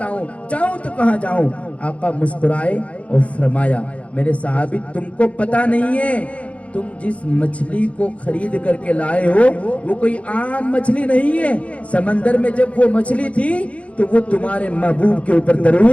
جاؤں تو کہاں جاؤں. آقا مسکرائے اور فرمایا میرے صحابی تم کو پتا نہیں ہے، تم جس مچھلی کو خرید کر کے لائے ہو وہ کوئی عام مچھلی نہیں ہے. سمندر میں جب وہ مچھلی تھی تو وہ تمہارے محبوب کے اوپر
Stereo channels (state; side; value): late; right; 0.064 ms